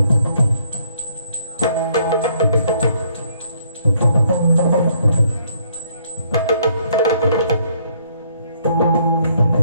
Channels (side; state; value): both; inverted; correlation -0.67